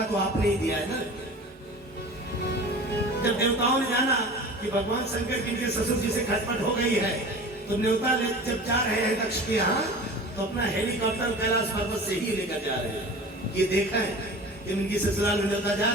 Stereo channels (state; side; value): normal; both; correlation 0.38